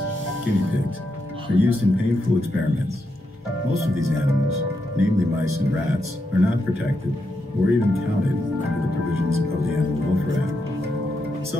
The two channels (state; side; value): normal; both; correlation 0.83